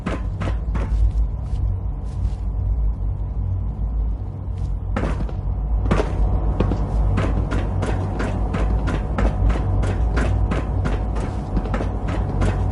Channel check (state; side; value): identical; both; correlation 1.00